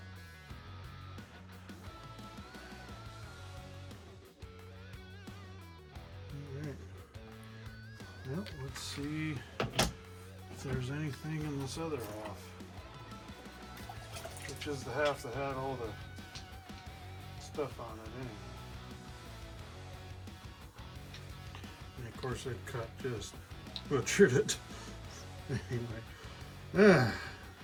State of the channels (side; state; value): both; identical; correlation 1.00